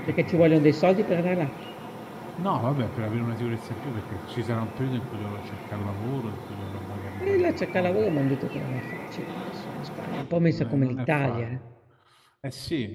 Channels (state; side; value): identical; both; correlation 1.00